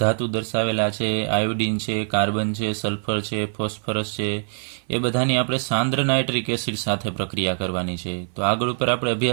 દર્શાવેલા છે. આયોડિન છે, કાર્બન છે, સલ્ફર છે, ફોસ્ફરસ છે. એ બધાની આપણે સાંદ્ર નાઇટ્રિક એસિડ સાથે પ્રક્રિયા કરવાની છે. તો આગળ ઉપર આપણે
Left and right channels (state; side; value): silent; left; 60 dB below the other